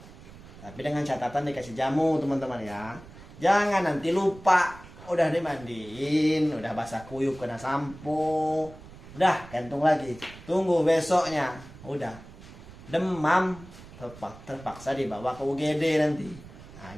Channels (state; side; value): noise; right; rumble, 18 dB below the sound